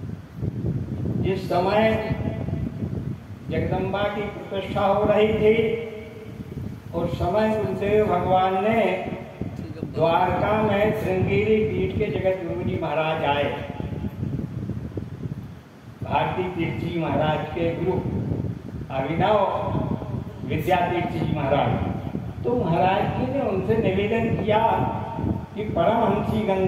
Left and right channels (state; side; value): identical; both; correlation 1.00